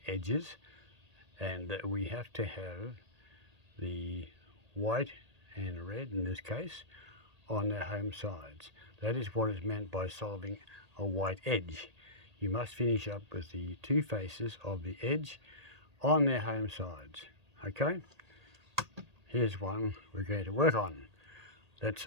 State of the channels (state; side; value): late; left; 1.8 ms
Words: edges, and we have to have the white and red, in this case, on their home sides. That is what is meant by solving a white edge. You must finish up with the two faces of the edge on their home sides. Okay? Here's one we're going to work on.